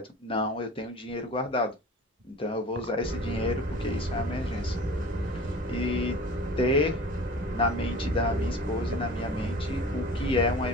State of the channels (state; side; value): normal; both; correlation 0.40